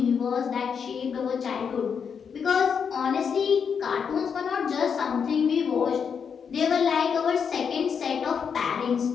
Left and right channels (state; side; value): quieter; right; 6.7 dB